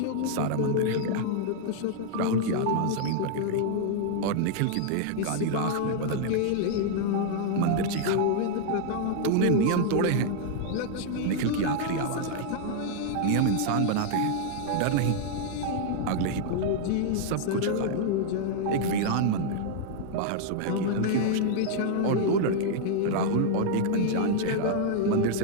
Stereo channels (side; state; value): both; different; correlation -0.01